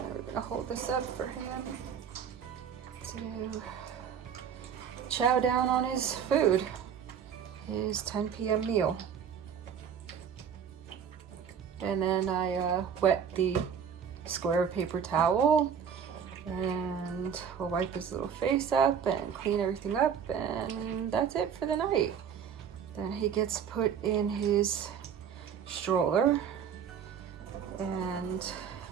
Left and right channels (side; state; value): left; quieter; 7.7 dB